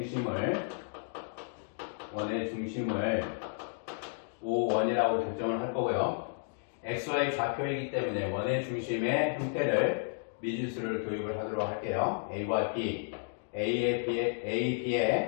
5원이라고 결정을 할 거고요. XY 좌표이기 때문에 원의 중심의 형태를 미지수를 도입을 하도록 할게요. A와 B, A,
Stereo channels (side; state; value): right; silent; digital silence